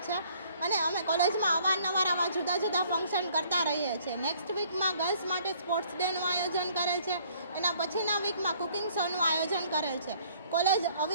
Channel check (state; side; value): inverted; both; correlation -0.60